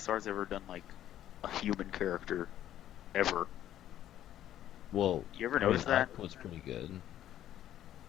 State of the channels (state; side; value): quieter; right; 11.9 dB